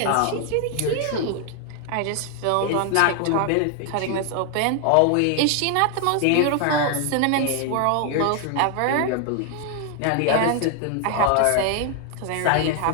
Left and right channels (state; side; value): different; both; correlation 0.00